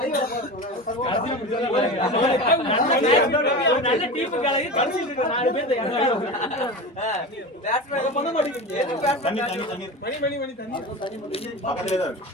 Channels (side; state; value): both; normal; correlation 0.27